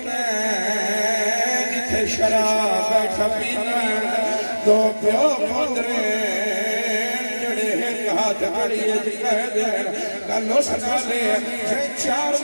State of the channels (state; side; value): inverted; both; correlation -1.00